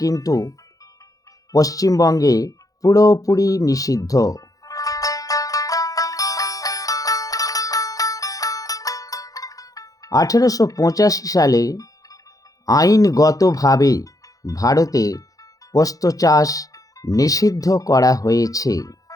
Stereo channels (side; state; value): right; late; 0.17 ms